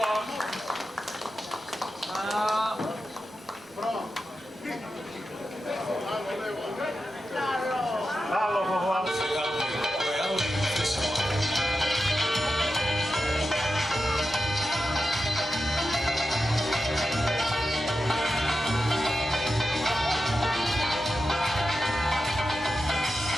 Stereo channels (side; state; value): both; normal; correlation 0.91